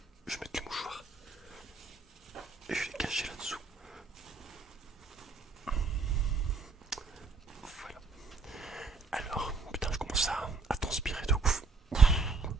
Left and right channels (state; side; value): quieter; left; 4.2 dB